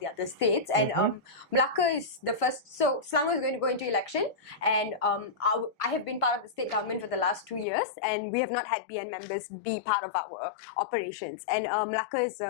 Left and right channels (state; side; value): drops out; right; at 7.7 s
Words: other states. And Melaka is the first. So Selangor is going to go into election, and I have been part of the state government for the last 2 years, and we have not had BN members be part of our operations. And Melaka is